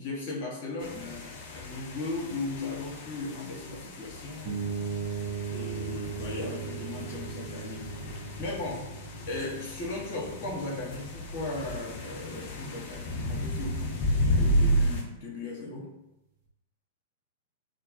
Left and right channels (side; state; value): both; inverted; correlation -0.39